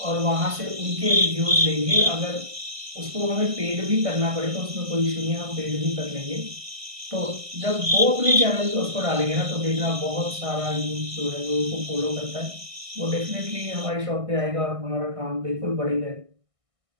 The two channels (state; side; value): late; left; 1.6 ms